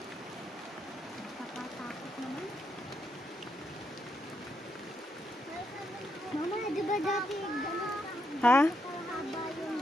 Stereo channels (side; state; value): both; normal; correlation 0.79